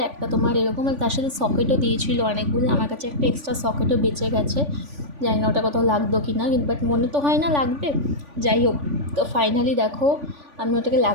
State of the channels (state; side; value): late; left; 3.5 ms